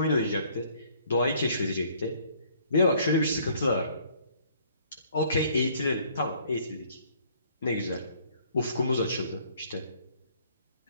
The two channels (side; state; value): both; inverted; correlation -0.61